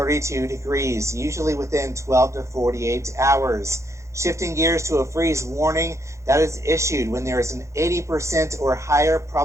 degrees, usually within 12 to 48 hours. Shifting gears to a freeze warning, that is issued when there is an 80% or higher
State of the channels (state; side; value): late; left; 0.14 ms